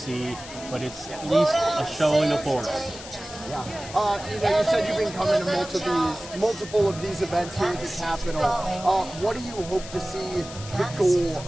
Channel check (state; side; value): noise; left; hiss, 14 dB below the sound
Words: but it's at least a showing of force. Yeah. You said you've been coming to multiple of these events here at the Capitol. What do you hope to see the goal